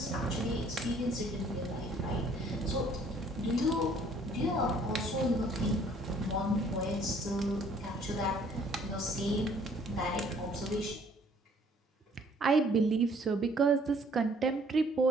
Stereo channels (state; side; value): normal; both; correlation 0.59